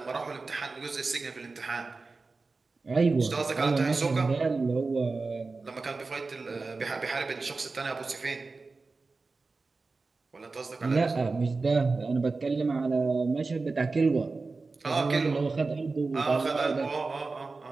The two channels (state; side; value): quieter; left; 3.9 dB